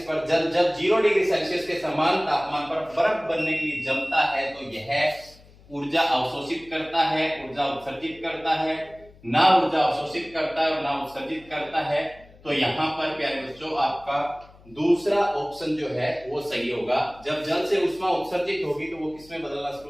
पर जल जब 0 डिग्री सेल्सियस के समान तापमान पर बर्फ बनने के लिए जमता है तो यह ऊर्जा अवशोषित करता है, ऊर्जा उत्सर्जित करता है, ना ऊर्जा अवशोषित करता है और ना उत्सर्जित करता है। तो यहाँ पर प्यारे बच्चों आपका दूसरा ऑप्शन जो है वो सही होगा। जब जल से उष्मा उत्सर्जित होगी तो वो किसमें बदलना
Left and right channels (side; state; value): left; noise; hum, 25 dB below the sound